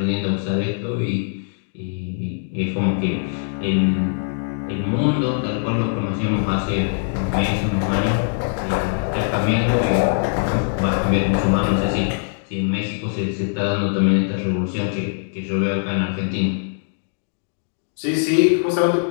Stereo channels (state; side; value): silent; right; digital silence